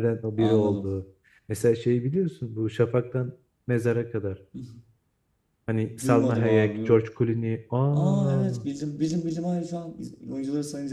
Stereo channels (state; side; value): identical; both; correlation 1.00